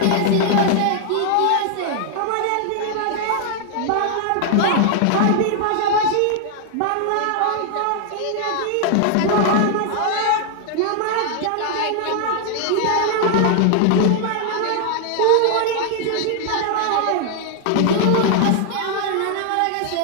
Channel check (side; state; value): both; different; correlation 0.00